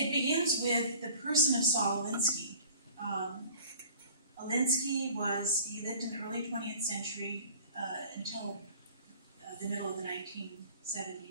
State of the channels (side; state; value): both; inverted; correlation -0.48